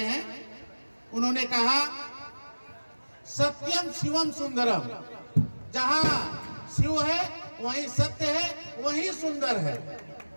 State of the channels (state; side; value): inverted; both; correlation -1.00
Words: हैं, उन्होंने कहा सत्यम शिवम सुंदरम, जहां शिव है वहीं सत्य है, वहीं सुंदर है।